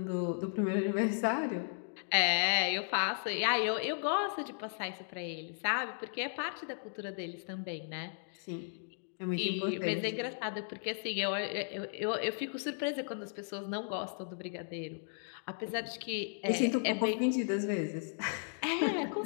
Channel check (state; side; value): silent; right; digital silence